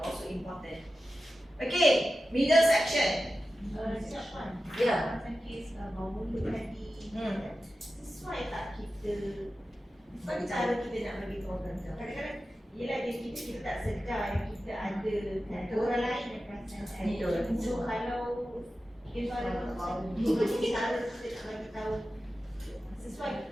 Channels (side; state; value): both; normal; correlation 0.93